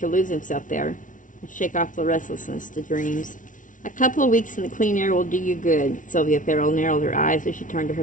lose himself there and shake off the restlessness to dreams. A couple of weeks in the clean air will do you good. Sylvia Farrell narrowed her eyes as she turned to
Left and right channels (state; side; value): late; right; 0.38 ms